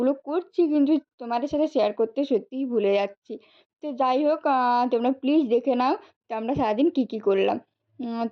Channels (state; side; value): identical; both; correlation 1.00